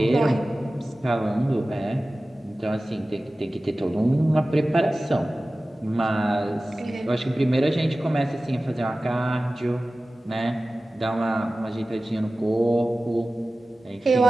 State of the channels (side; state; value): both; normal; correlation 0.96